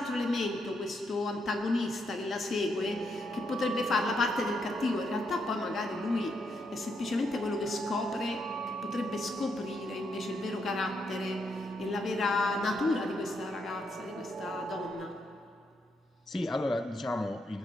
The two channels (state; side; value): normal; both; correlation 0.78